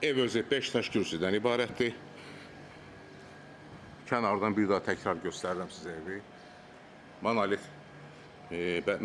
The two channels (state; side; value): identical; both; correlation 1.00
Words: Ev özü 5 daş kürsüdən ibarətdir. Kənardan bir daha təkrar göstərirəm sizə evi. Monolit,